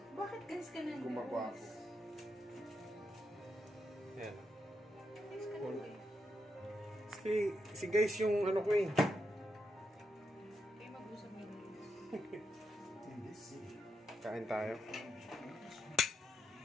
Bakit guys ka na? gumagawa ako. Yan. Guys ka na guys. Si guys yung ano ko eh. Kayo mag-usap nyo guys. Kain tayo.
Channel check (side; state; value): both; normal; correlation 0.83